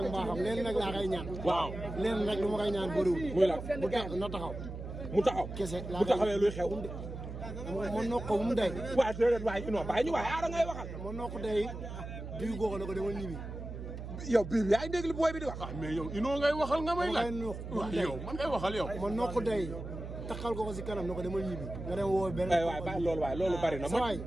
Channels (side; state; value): right; noise; hum, 8 dB below the sound